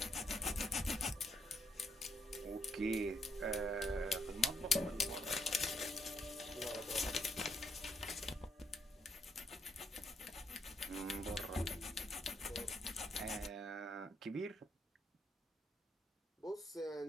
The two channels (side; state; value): both; normal; correlation 0.73